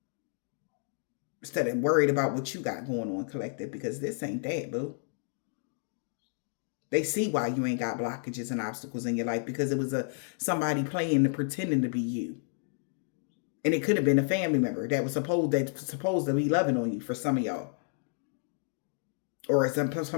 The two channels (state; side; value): silent; right; digital silence